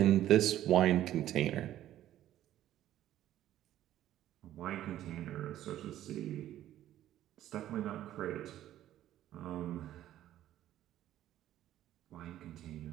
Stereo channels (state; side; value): quieter; left; 12.7 dB